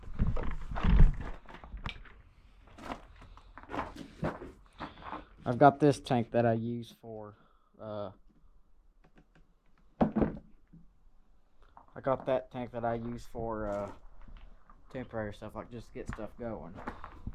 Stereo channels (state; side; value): identical; both; correlation 1.00